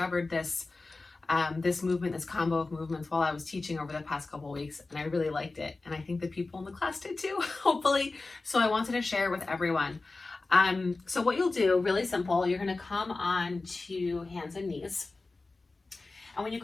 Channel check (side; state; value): right; quieter; 3.5 dB